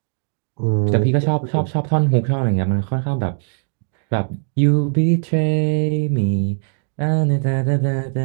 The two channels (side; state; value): left; silent; digital silence